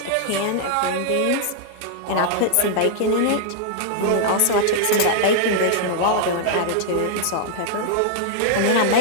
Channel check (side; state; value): both; different; correlation -0.01